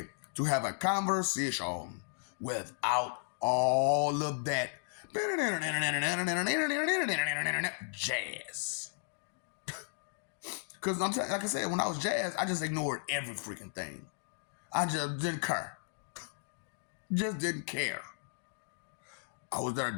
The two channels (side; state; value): right; silent; digital silence